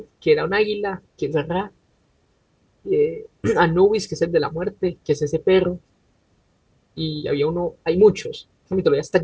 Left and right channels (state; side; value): identical; both; correlation 1.00